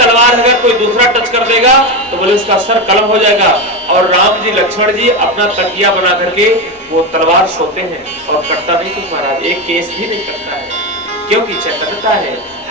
अगर कोई दूसरा टच कर देगा तो बोले उसका सर कलम हो जाएगा। और राम जी, लक्ष्मण जी अपना तकिया बना करके वो तलवार सोते हैं और कटता नहीं कुछ महाराज, एक केस भी नहीं कटता है, क्योंकि चैतन्यता है,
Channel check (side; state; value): both; normal; correlation 0.14